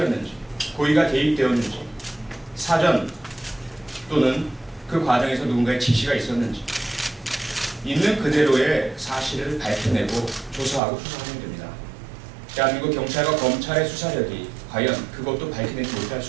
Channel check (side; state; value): left; drops out; at 10.8 s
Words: 고의가 개입되었는지, 사전 또는 그 과정에서 누군가의 지시가 있었는지 있는 그대로의 사실을 밝혀내고 조사하고 수사하면 됩니다. 대한민국 경찰과 검찰의 수사력이 과연 그것도 밝혀내지 못할